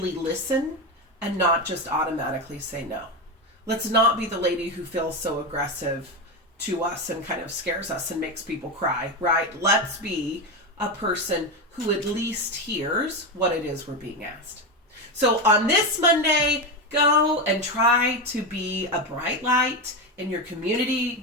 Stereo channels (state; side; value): normal; both; correlation 0.14